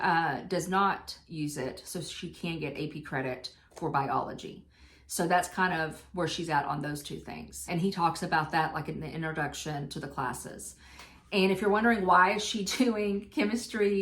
does not use it. So she can get AP credit for biology. So that's kind of where she's at on those two things. And he talks about that like in the introduction to the classes. And if you're wondering why is she doing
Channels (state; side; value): identical; both; correlation 1.00